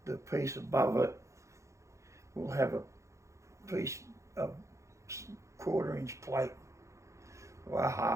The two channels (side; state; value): left; late; 0.15 ms